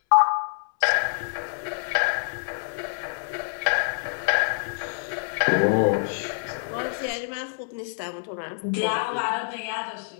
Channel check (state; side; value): silent; right; 61 dB below the other